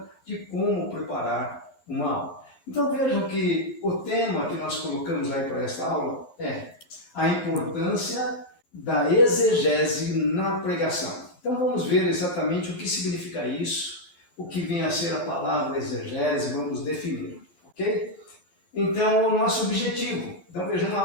de como preparar uma aula. Então vejam que o tema que nós colocamos aí para esta aula é a importância da exegese na pregação. Então vamos ver exatamente o que significa isso, o que vem a ser a palavra exegese, vamos definir, ok? Então, o nosso objetivo. Então, veja, uma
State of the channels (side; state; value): right; late; 11 ms